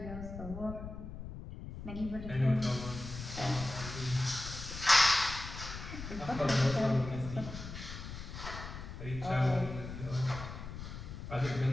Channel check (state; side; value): noise; left; rumble, 9 dB below the sound